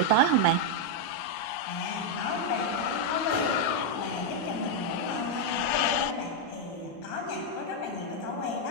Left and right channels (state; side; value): late; right; 13 ms